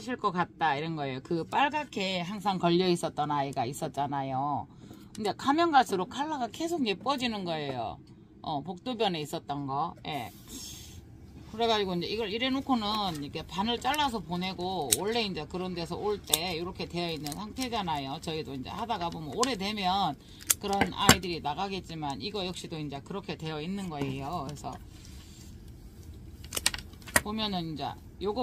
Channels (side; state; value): both; identical; correlation 1.00